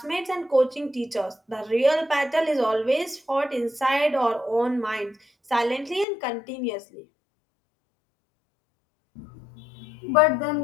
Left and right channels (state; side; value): drops out; right; at 6.1 s